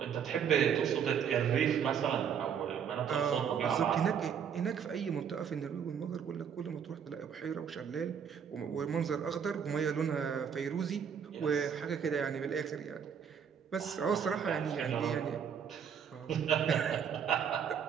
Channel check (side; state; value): left; quieter; 7.6 dB